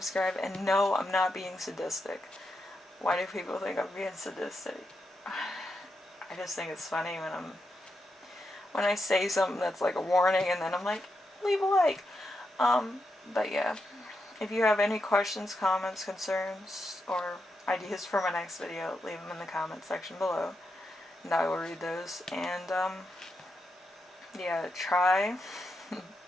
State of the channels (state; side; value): normal; both; correlation 0.85